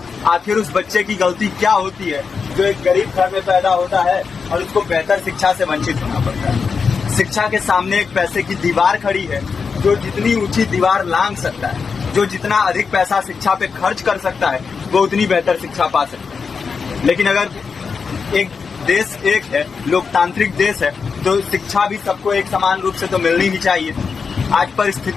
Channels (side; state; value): right; quieter; 5.4 dB